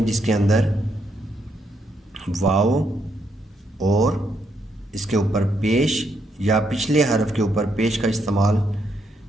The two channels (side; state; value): both; normal; correlation 0.76